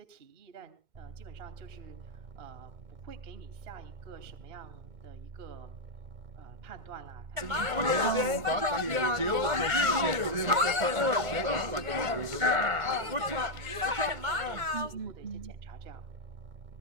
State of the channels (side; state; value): left; late; 2.2 ms